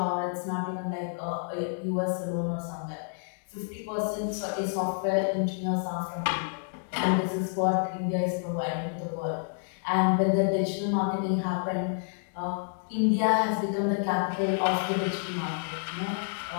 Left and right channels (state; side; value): silent; right; 58 dB below the other